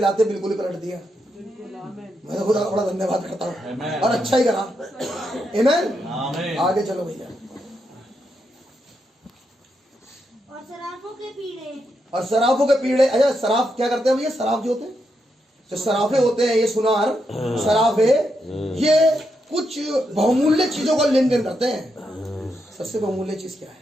बिल्कुल ही पलट दिया। मैं तो खुदा का बड़ा धन्यवाद करता हूँ, और अच्छा ही करा। आमीन। आमीन। आगे चलो भैया। और सराफों के पीड़े, और सराफों के पीड़े, अच्छा सराफ क्या करते हैं भैया? सराफ जो होते हैं, जो सराफे होते हैं, ये सुनार सराफे, ये कुछ बहुमूल्य चीजों का लेन देन करते हैं। सबसे बहुमूल्य चीज क्या है?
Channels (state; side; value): normal; both; correlation 0.82